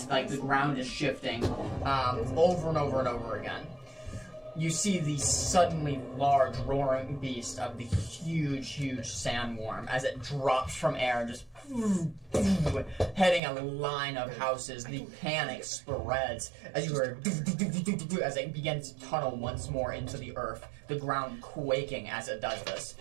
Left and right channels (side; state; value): left; drops out; at 13.4 s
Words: the ground is shifting over and over and over again. You see the suddenly large roaring beast of the huge, huge sandworm as it drops from air, just heading a line of houses. The panic spreads as you hear as it begins to tunnel once more into the earth, the ground quaking as it does this.